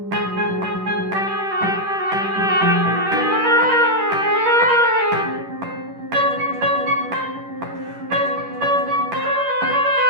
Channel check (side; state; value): left; late; 10 ms